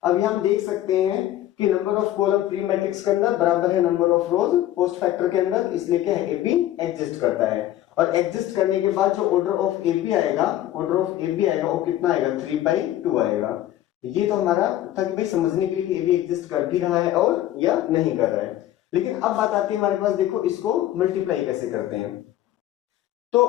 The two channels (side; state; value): right; quieter; 13.3 dB